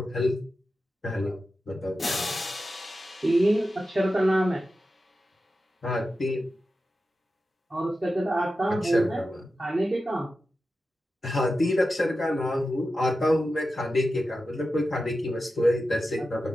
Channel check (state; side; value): normal; both; correlation 0.92